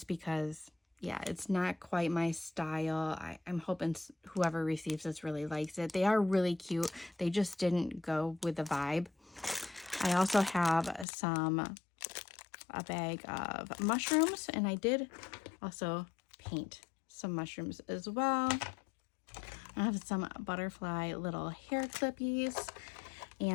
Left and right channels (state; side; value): drops out; right; at 11.1 s